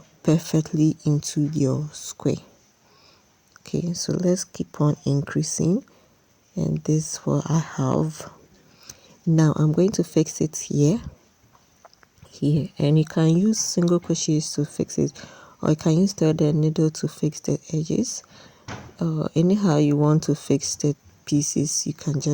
perfectly into your square. Okay, so let's keep on increasing, and this is what I have. Now I'm going to fix it here, and you can use single crochets to fix it, or you can use threaded needle to fix the edges. Anyhow you want to fix the pieces, you can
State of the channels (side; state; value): both; identical; correlation 1.00